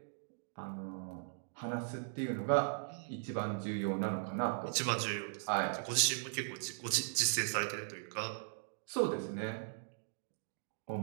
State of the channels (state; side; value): silent; left; digital silence